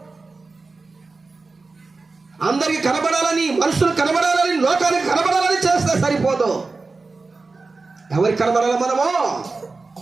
అందరికి కనబడాలని, మనుషులు కనబడాలని, లోకానికి కనబడాలని చేస్తే సరిపోదు. ఎవరికి కనబడాలి? మనము.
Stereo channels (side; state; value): left; quieter; 3.8 dB